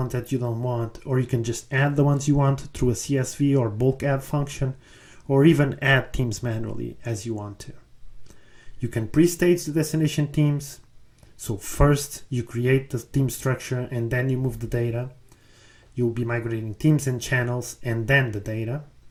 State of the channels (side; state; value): both; identical; correlation 1.00